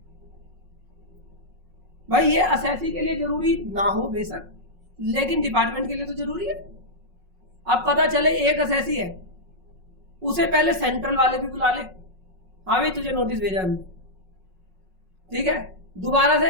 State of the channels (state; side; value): late; left; 5.4 ms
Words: भाई ये असेसी के लिए जरूरी ना हो बेशक, लेकिन डिपार्टमेंट के लिए तो जरूरी है। अब पता चले एक असेसी है, उसे पहले सेंट्रल वाले भी बुला ले, हाँ भाई तुझे नोटिस भेजा हमने, ठीक है, दोबारा